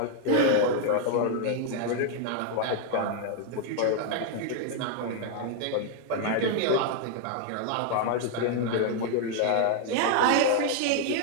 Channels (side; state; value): both; different; correlation 0.00